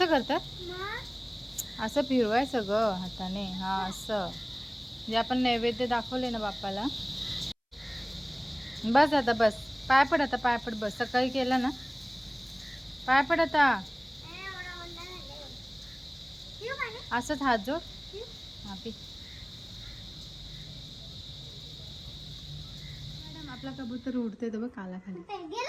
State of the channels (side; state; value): both; identical; correlation 1.00